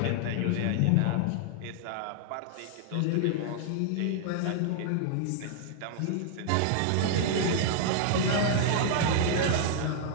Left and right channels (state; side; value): different; both; correlation 0.00